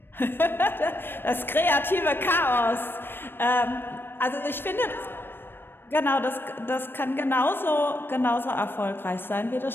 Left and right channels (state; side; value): late; right; 0.10 ms